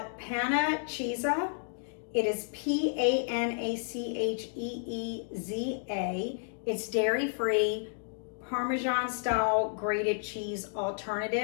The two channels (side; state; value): right; silent; digital silence